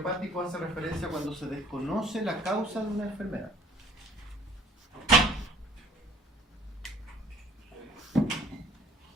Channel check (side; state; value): both; normal; correlation 0.55